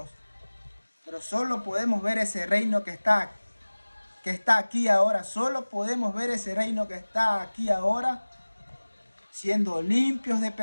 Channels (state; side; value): inverted; both; correlation -1.00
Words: Pero solo podemos ver ese reino que está aquí ahora. Solo podemos ver ese reino que está aquí ahora siendo limpios de